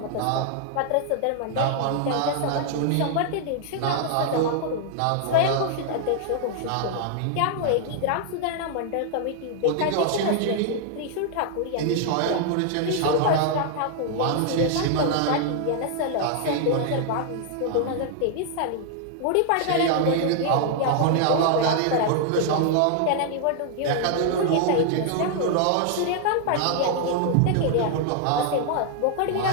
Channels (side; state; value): both; different; correlation -0.01